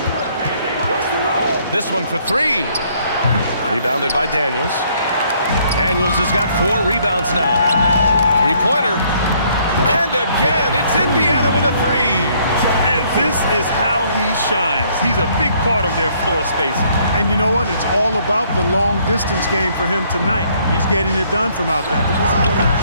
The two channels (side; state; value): both; inverted; correlation -0.65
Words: This one for 3. Rebounded by Daniels. Daniels has got 4 rebounds now. 3-pointer. And again, it's Indiana with a 3. And this is how he shines. He's a big part of their floor spacing. And you know what? It's all about the long distance game for him tonight. He's getting it done from out there.